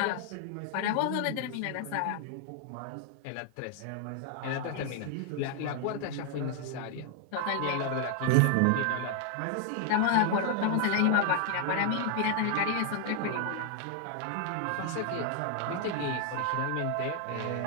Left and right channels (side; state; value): both; different; correlation 0.00